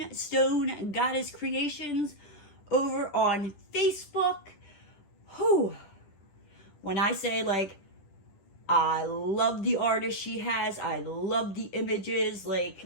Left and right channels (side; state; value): right; late; 10 ms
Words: Goddess Creations over on Facebook. Whew. When I say, like, I love the artist she has, I love the images,